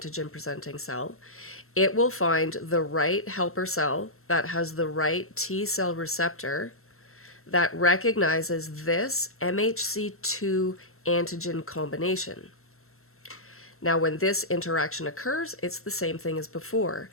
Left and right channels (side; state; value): right; late; 0.62 ms